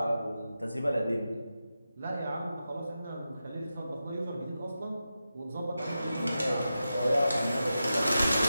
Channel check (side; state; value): both; inverted; correlation -0.91